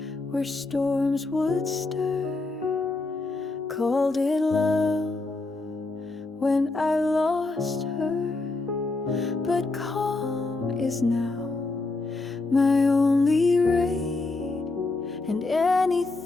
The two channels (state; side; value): quieter; right; 3.3 dB